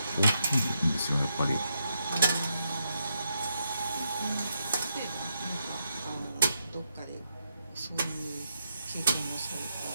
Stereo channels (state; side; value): inverted; both; correlation -0.82